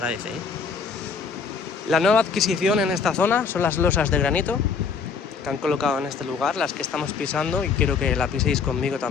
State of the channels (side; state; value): right; quieter; 5.5 dB